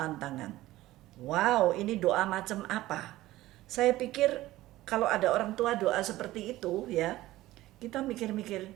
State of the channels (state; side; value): quieter; left; 16.5 dB